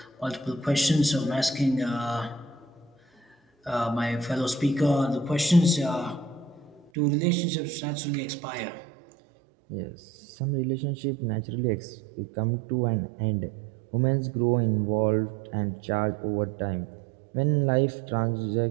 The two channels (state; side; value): drops out; left; at 6.9 s